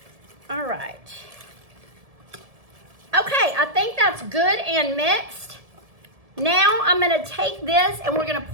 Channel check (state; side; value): late; left; 1.7 ms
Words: All right. Okay, I think that's good and mixed. Now I'm gonna take this and we're gonna